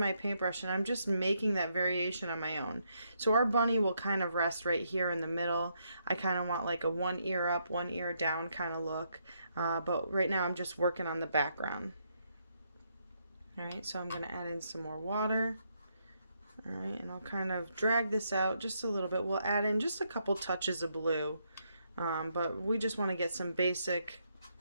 paintbrush and I'm just making that variation on my own. So our bunny will kind of rest right here in the middle. I kind of want like a one ear up, one ear down kind of look, but right now I'm just working on the background. All right, so I'm going to add in some more water. All right, and I'll kind of drag this out just a little bit. We'll add in just a couple touches of blue, but we just want to get some basic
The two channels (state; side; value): inverted; both; correlation -0.76